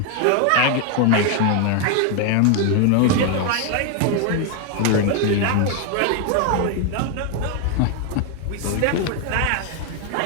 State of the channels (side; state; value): both; different; correlation 0.01